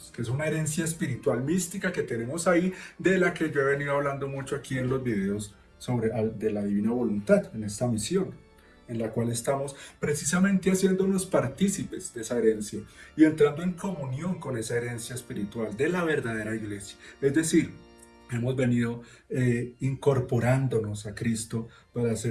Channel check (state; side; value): identical; both; correlation 1.00